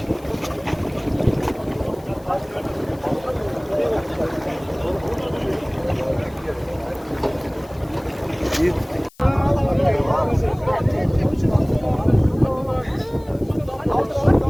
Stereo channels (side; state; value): left; noise; hiss, 28 dB below the sound